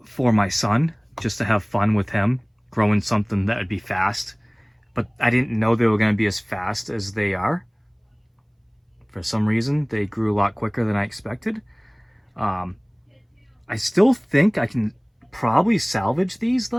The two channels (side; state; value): both; identical; correlation 1.00